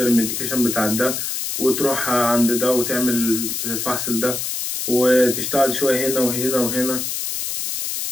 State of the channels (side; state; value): left; noise; hiss, 3 dB below the sound